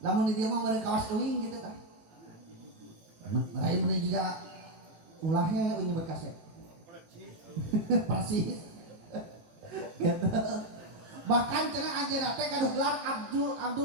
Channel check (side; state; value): left; late; 19 ms